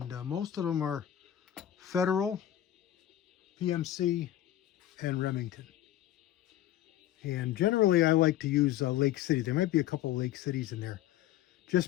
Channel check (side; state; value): right; quieter; 12.5 dB